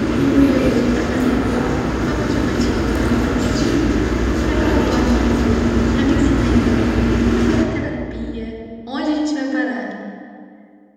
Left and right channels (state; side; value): identical; both; correlation 1.00